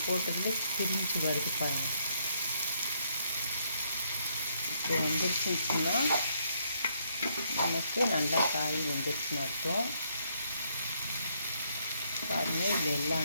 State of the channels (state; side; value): inverted; both; correlation -0.72